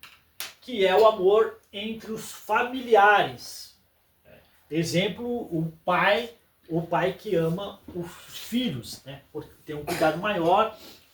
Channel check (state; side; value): identical; both; correlation 1.00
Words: que é o amor entre os familiares. Exemplo, o pai que ama os filhos, né? Porque tem um cuidado maior,